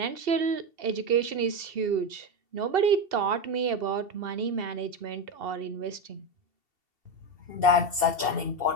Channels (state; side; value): late; left; 2.7 ms